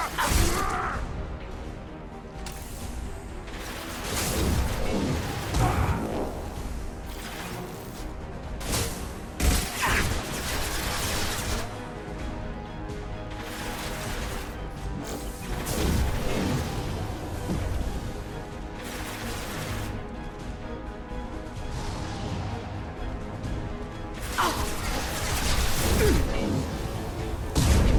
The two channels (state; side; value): identical; both; correlation 1.00